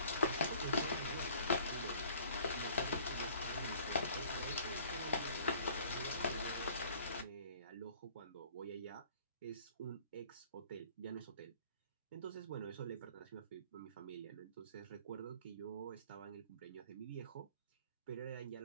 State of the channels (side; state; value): both; inverted; correlation -0.53